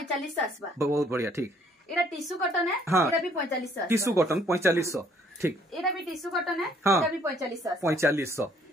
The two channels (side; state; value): both; normal; correlation 0.63